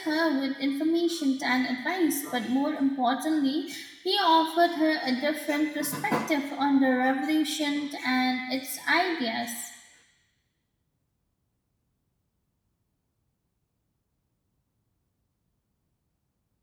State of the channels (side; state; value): both; identical; correlation 1.00